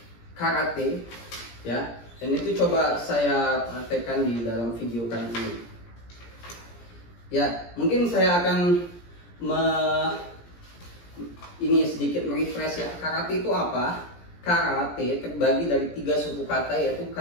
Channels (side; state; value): right; late; 17 ms